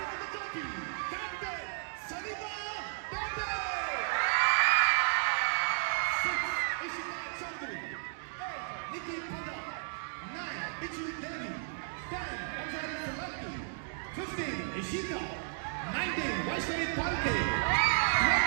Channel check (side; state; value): left; silent; digital silence